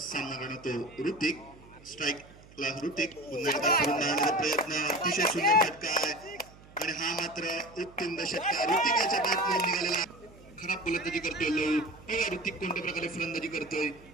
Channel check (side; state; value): right; noise; hum, 23 dB below the sound